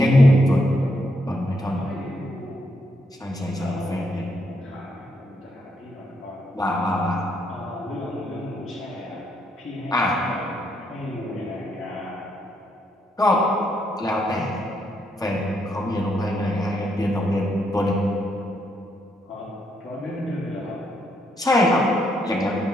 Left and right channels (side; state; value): both; normal; correlation 0.76